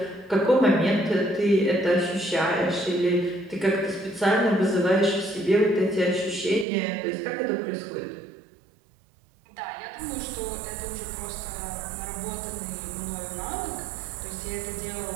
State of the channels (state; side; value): drops out; left; at 6.7 s